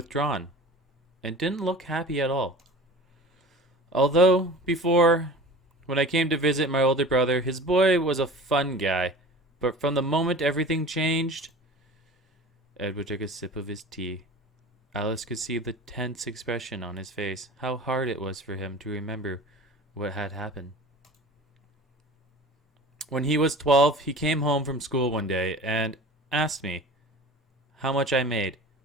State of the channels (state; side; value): normal; both; correlation 0.39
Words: and didn't look happy at all. Although, before, when I came to visit my older brother, his boy was a fun guy. But from the moment everything changed, Edward took a sip of his tea. Alice could see the tense expression on his face, how hard it was for him to remember what had happened. When he was 12, he came home from school one day and asked me how much I made.